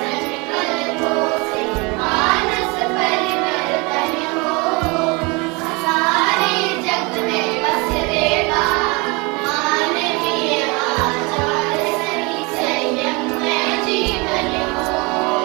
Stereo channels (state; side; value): quieter; left; 27.7 dB